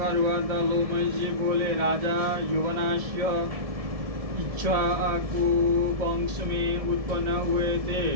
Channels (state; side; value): late; left; 1.7 ms